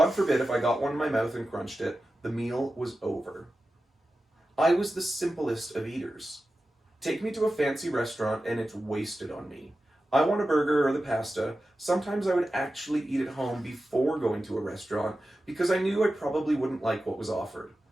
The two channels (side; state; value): both; normal; correlation 0.93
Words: forbid if I got one in my mouth and crunched it, the meal was over. I was the simplest of eaters. Take me to a fancy restaurant and it's wasted on me. I want a burger or the pasta. Sometimes I would actually eat at home before going to a restaurant because I knew I probably wouldn't like what was offered.